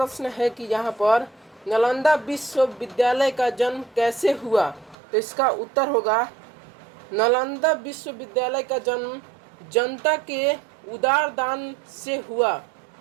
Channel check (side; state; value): left; drops out; at 5.0 s